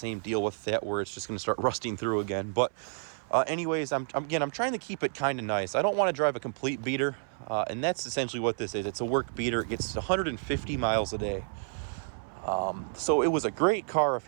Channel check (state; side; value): silent; left; 58 dB below the other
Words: deal with that where it's just going to start rusting through again. But anyways, I'm trying to keep it kind of nice. I don't want to drive a complete beater, and that's essentially what this is. It's a work beater. It gets 150 miles a day. So it was a great car, a